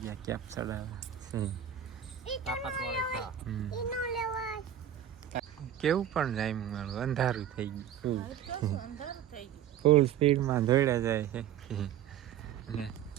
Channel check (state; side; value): quieter; left; 9.9 dB